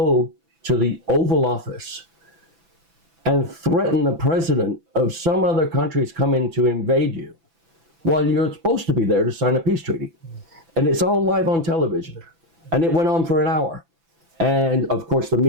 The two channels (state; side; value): late; left; 6.0 ms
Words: to the Oval Office and threaten the president of some other countries coming to invade you while you're supposed to be there to sign a peace treaty. And it's all live on television. And it went on for an hour. And of course the